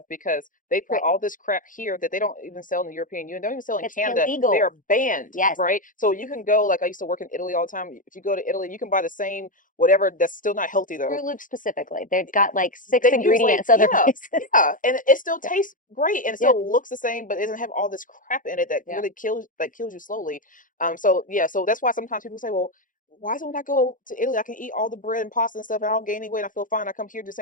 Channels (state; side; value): late; right; 0.39 ms